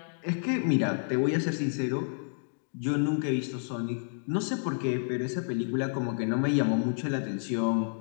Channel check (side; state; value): right; silent; digital silence